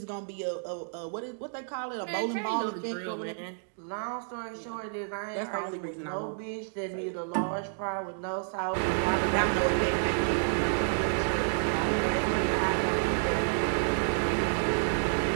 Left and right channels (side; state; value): left; silent; digital silence